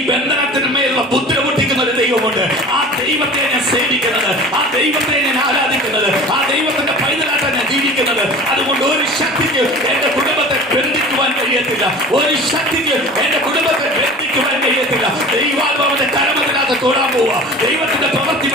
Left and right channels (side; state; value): both; normal; correlation 0.39